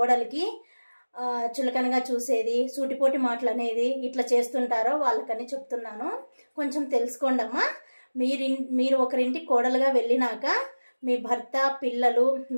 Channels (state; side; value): inverted; both; correlation -1.00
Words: చులకనగా చూసేది, సూటిపోటి మాటలు అనేది ఇట్లా చేస్తుంటారో వాళ్ళకని చెప్తున్నాను. కొంచెం తెలుసుకోండి అమ్మా. మీరు ఒకరింటికి కోడలుగా వెళ్ళినాక మీ భర్త, పిల్లలు,